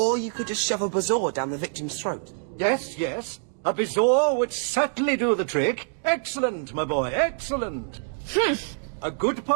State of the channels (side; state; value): left; silent; digital silence